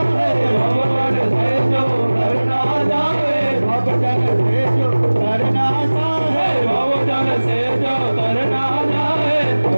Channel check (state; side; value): inverted; both; correlation -1.00